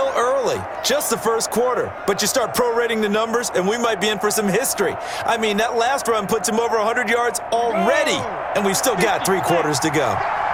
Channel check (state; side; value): identical; both; correlation 1.00